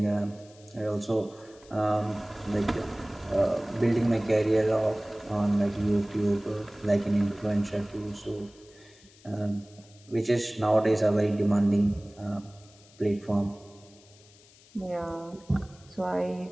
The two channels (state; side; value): noise; left; hiss, 26 dB below the sound